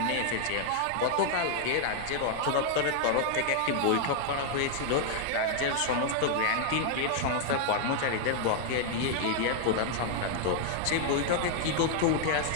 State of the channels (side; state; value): both; different; correlation 0.00